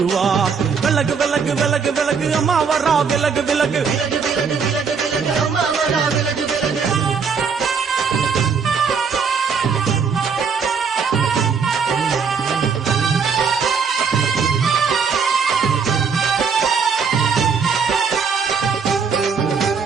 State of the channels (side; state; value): left; quieter; 5.9 dB